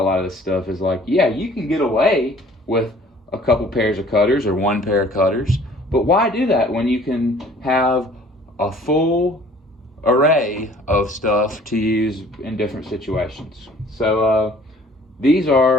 lot of this stuff is like, yeah, you can get away with a couple pairs of cutters or one pair of cutters, but why do that when you can have a full array of stuff to use in different situations? So these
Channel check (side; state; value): both; normal; correlation 0.53